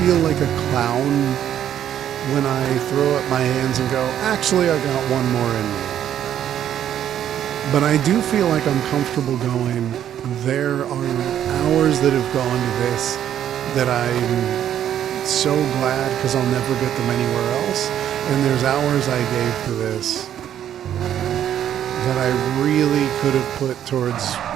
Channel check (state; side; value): quieter; left; 10.4 dB